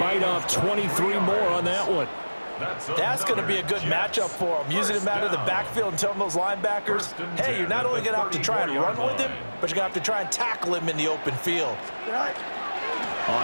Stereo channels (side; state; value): both; inverted; correlation -1.00